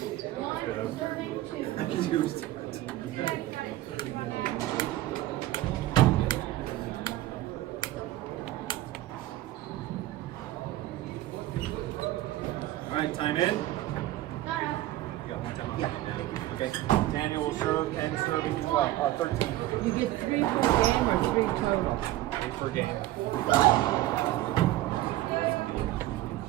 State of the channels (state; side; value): quieter; left; 15.5 dB